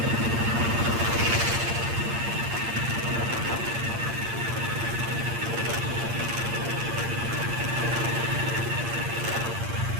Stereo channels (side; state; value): left; late; 8.7 ms